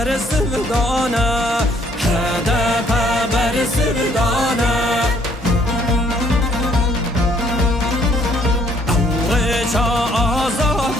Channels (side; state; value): both; normal; correlation 0.64